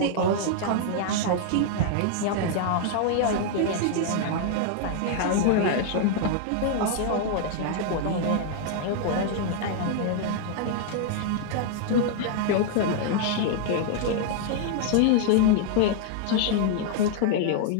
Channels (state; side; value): different; both; correlation 0.00